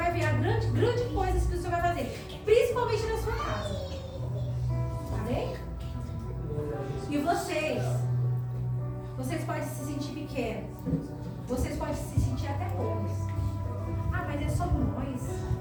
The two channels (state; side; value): identical; both; correlation 1.00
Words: ver a grande coisas que o Senhor vai fazer. Principalmente na sua casa. Amém? E vocês podem se sentir pequenos. Vocês podem se sentir até poucos. Ah, mas é só nós.